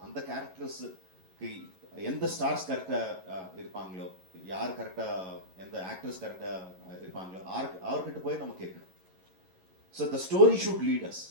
அந்த கேரக்டர்ஸுக்கு எந்த ஸ்டார்ஸ் கரெக்டாக இருப்பாங்களோ, யார் கரெக்டாக, எந்த ஆக்டர்ஸ் கரெக்டாக இருப்பாங்களோ அவர்கிட்ட போய் நம்ம கேட்கணும். So the story should lead us.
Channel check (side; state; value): left; late; 11 ms